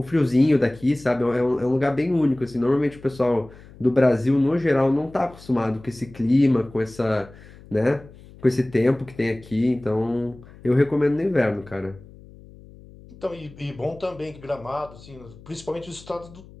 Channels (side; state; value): left; noise; hum, 21 dB below the sound